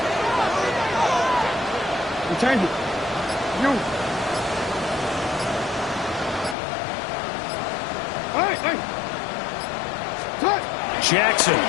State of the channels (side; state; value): right; drops out; at 6.6 s